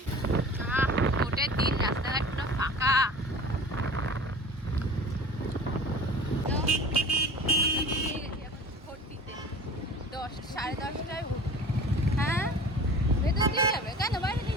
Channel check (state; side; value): normal; both; correlation 0.41